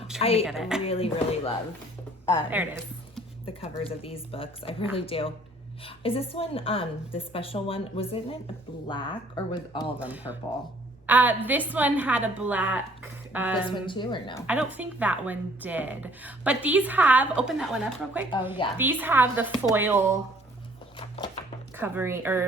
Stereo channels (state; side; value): normal; both; correlation 0.58